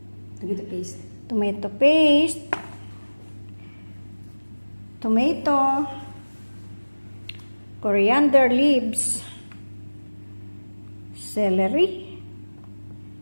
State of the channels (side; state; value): both; inverted; correlation -1.00